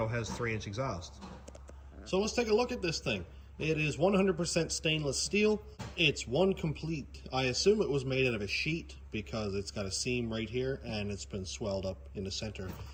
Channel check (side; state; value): both; identical; correlation 1.00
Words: has 3-inch exhaust. So let's take a look at this thing. It is 100% stainless steel. It's one complete. I assume it was made out of a sheet because it's got a seam right here and it's been swelled up in the center